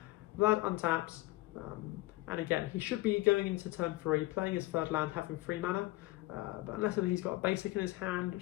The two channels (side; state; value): right; quieter; 18.9 dB